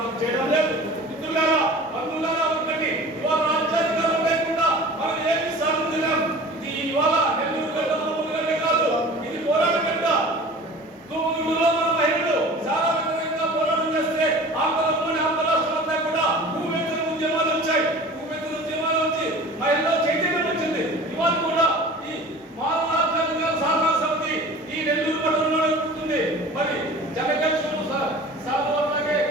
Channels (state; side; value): normal; both; correlation 0.41